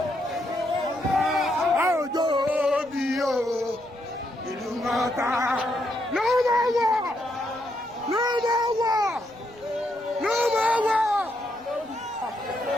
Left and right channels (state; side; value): noise; right; rumble, 27 dB below the sound